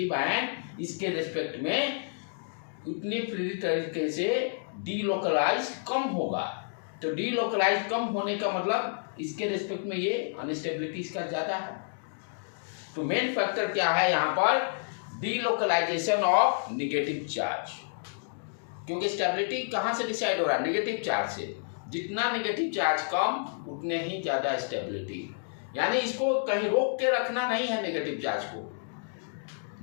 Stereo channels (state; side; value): silent; right; digital silence